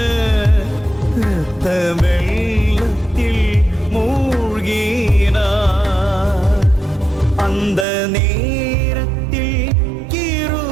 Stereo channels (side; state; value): left; drops out; at 7.9 s